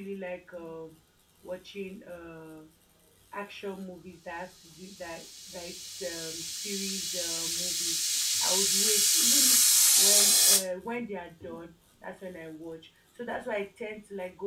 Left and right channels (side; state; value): both; identical; correlation 1.00